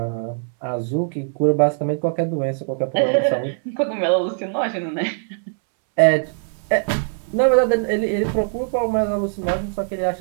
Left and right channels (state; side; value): silent; left; 65 dB below the other